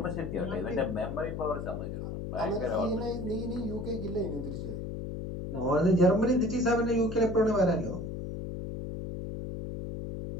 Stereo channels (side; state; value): left; noise; hum, 6 dB below the sound